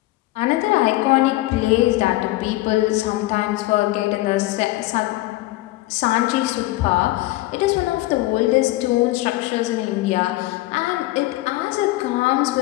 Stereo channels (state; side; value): quieter; right; 18.3 dB